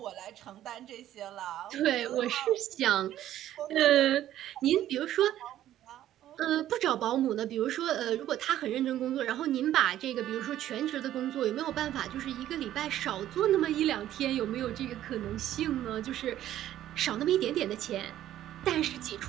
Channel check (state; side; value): quieter; left; 12.5 dB